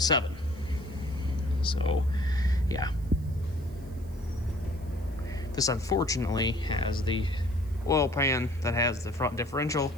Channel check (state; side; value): noise; right; hiss, 27 dB below the sound